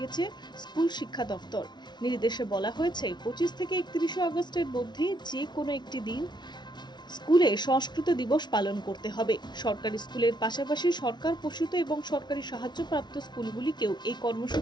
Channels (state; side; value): late; right; 0.21 ms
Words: স্কুল শিক্ষা দফতর। নির্দেশে বলা হয়েছে 25 থেকে 31শে আগস্টের মধ্যে যে কোনো একটি দিন স্কুলে সংস্কৃত দিবস পালন করতে হবে। সরকারি স্কুলের পাশাপাশি সরকার পোষিত এবং সরকারি সাহায্যপ্রাপ্ত স্কুলগুলিকেও এই